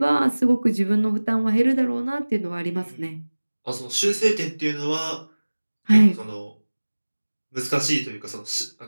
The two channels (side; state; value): both; inverted; correlation -1.00